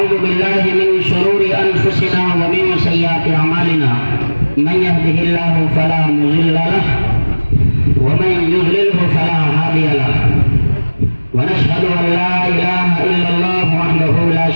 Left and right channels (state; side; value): inverted; both; correlation -1.00